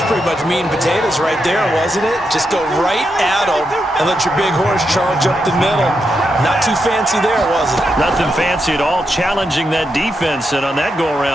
pretty much meat and potatoes right there, wasn't it? Just go right at them and let your big horse charge up the middle. Not too fancy there, was it? Nothing fancy at all, challenging that defense. And on that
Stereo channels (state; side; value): normal; both; correlation 0.84